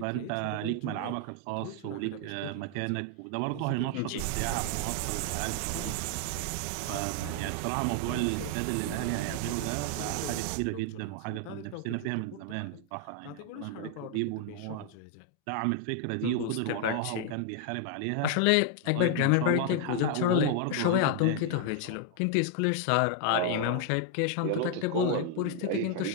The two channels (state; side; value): different; both; correlation 0.00